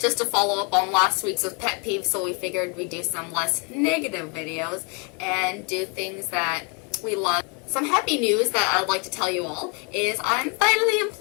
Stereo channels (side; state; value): right; quieter; 33.2 dB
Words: to follow up on last week's with pet peeves, so we figured we'd do some less negative videos and do things that we love. Some happy news that I'd like to tell you all is I'm finally